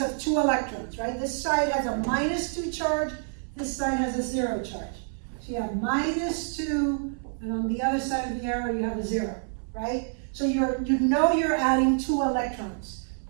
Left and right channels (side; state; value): left; silent; 60 dB below the other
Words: of 2 electrons, right? This side has a -2 charge, this side has a 0 charge. So you have -2, and on the other side of the arrow you have a 0, right? So you know you're adding 2 electrons,